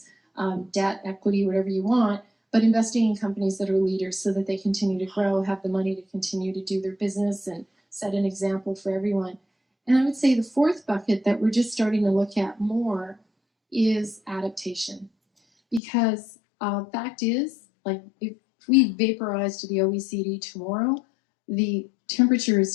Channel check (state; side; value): drops out; right; at 15.8 s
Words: debt, equity, whatever you want, but investing in companies that are leaders so that they continue to grow, have the money to continue to do their business and set an example for everyone. And I would say the fourth bucket that we're just starting to look at more is adaptation. Because fact is, like, if we vaporize to the OECD tomorrow, the temperature is